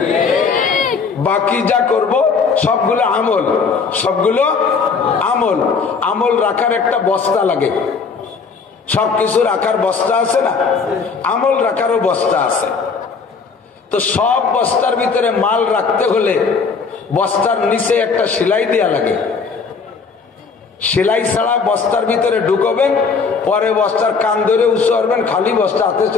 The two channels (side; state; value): right; quieter; 5.1 dB